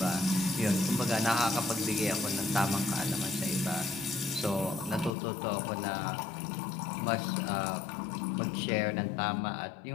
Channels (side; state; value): right; drops out; at 5.1 s